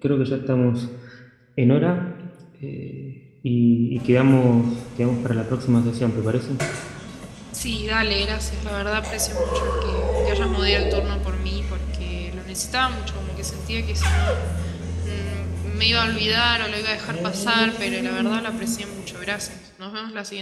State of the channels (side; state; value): both; identical; correlation 1.00